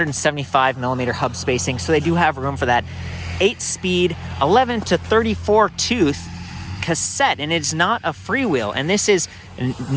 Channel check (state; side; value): identical; both; correlation 1.00